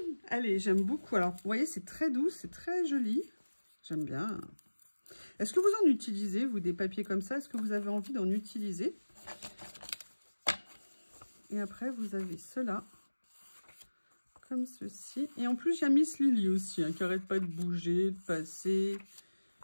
Allez, j'aime beaucoup. Alors, vous voyez, c'est très doux, c'est très joli. J'aime bien. Est-ce que vous en utilisez, vous, des papiers comme ça? Est-ce que vous avez envie d'en utiliser? Et après, vous avez cela, comme ceci. Et en plus, il y a Miss Lily aussi, hein, qui n'arrête pas de bouger, de passer.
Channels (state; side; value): inverted; both; correlation -1.00